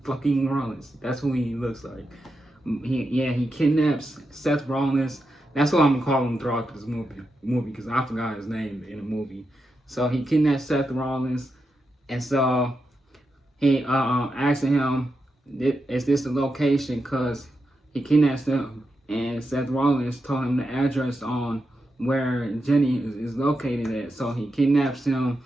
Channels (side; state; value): both; normal; correlation 0.87